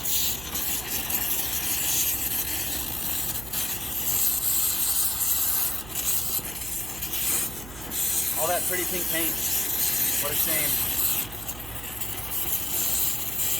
All that pretty pink paint. What a shame.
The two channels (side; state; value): right; noise; hum, 14 dB below the sound